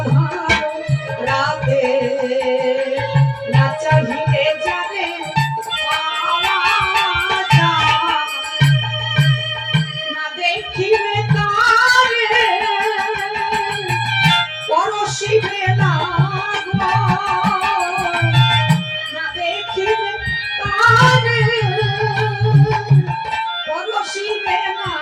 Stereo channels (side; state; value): both; identical; correlation 1.00